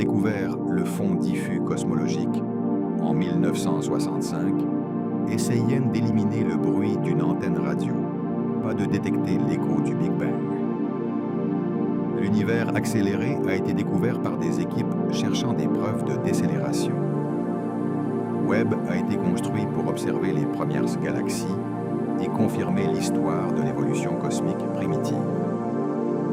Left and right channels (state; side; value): identical; both; correlation 1.00